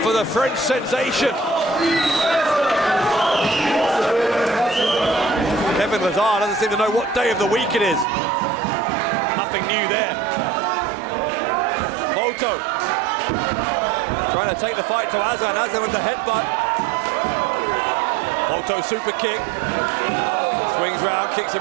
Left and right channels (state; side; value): drops out; left; at 8.1 s